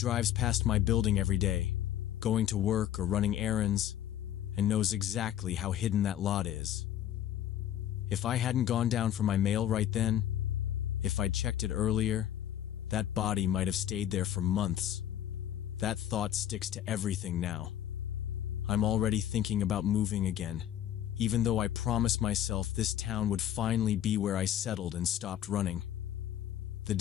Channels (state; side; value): quieter; right; 11.2 dB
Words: past my building every day, going to work or running errands, and knows exactly how hidden that lot is. If I hadn't gone down for my mail right then, if I'd checked it earlier, that body might have stayed there for months. That thought sticks to everything now. I'm already thinking about moving again, even though I promised myself this town would finally be where I settled and stopped running. The